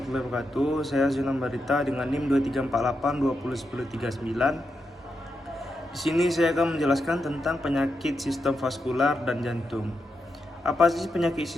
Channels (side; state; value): both; normal; correlation 0.85